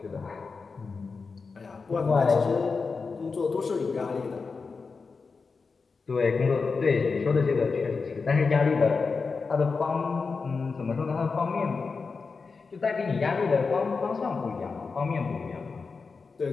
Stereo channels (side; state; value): right; quieter; 4.7 dB